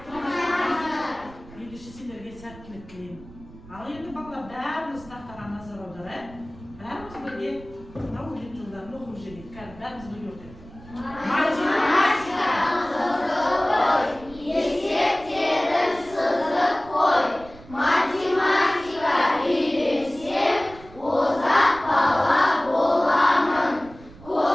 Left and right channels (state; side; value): noise; right; rumble, 20 dB below the sound